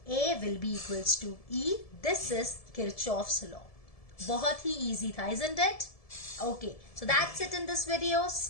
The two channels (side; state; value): right; late; 1.7 ms